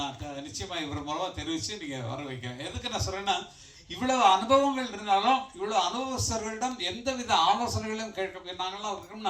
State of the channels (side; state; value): both; identical; correlation 1.00